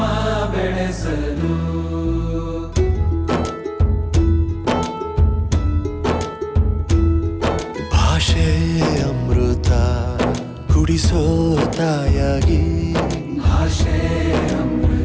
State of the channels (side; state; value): both; identical; correlation 1.00